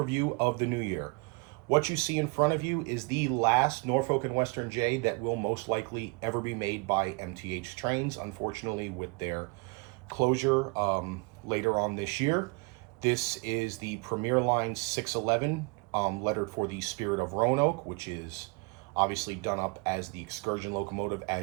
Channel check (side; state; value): left; quieter; 29.8 dB